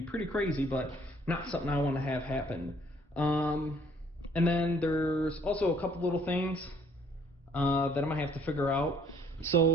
pretty crazy, but not something I want to have happen. And then there's also a couple little things that I'm gonna have to figure out.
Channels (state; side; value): normal; both; correlation 0.61